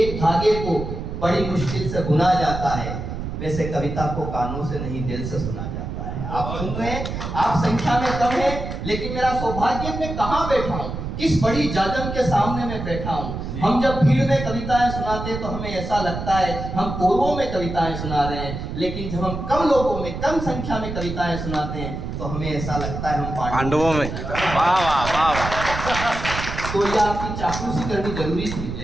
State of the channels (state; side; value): noise; right; rumble, 6 dB below the sound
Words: धागे को बड़ी मुश्किल से बुना जाता है, वैसे कविता को कानों से नहीं दिल से सुना जाता है। आप सुन रहे हैं, आप संख्या में कम है, लेकिन मेरा सौभाग्य मैं कहाँ बैठा हूँ, किस बड़ी जाजम के सामने मैं बैठा हूँ। हम जब भीड़ में कविताएं सुनाते हैं तो हमें ऐसा लगता है हम कोरों में कविताएं सुना रहे हैं, लेकिन जब हम कम लोगों में, कम संख्या में कविताएं सुनाते हैं तो हमें ऐसा लगता है हम पांडवों में। वाह वाह वाह वाह। तो ये आपकी चापलूसी करनी जरूरी